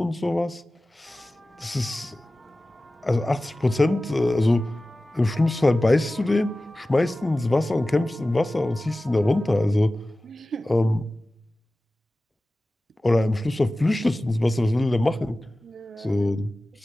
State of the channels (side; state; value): both; normal; correlation 0.96